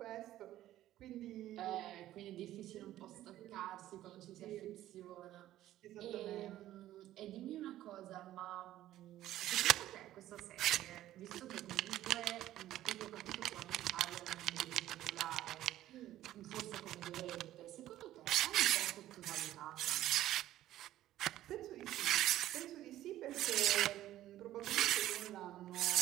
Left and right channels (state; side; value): quieter; left; 13.8 dB